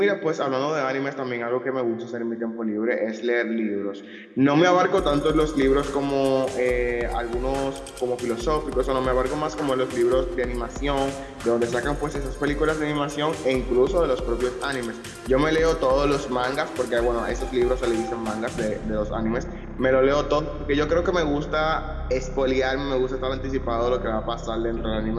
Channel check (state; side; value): identical; both; correlation 1.00